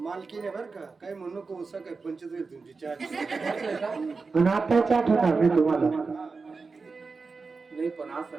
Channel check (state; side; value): quieter; left; 4.4 dB